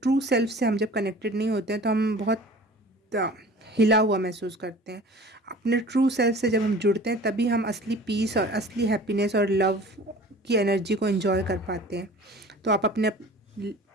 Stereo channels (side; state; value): both; normal; correlation 0.43